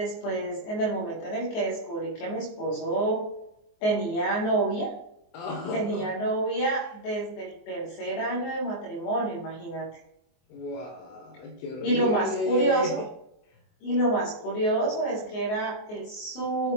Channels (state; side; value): late; right; 24 ms